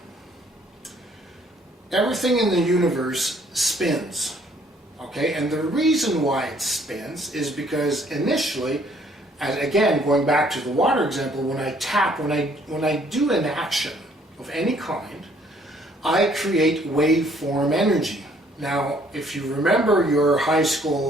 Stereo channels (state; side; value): normal; both; correlation 0.62